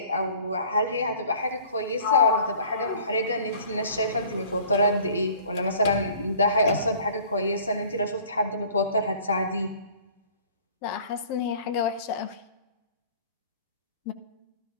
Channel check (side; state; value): both; inverted; correlation -0.50